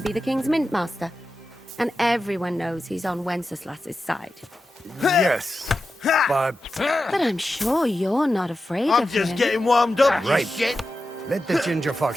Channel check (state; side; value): normal; both; correlation 0.91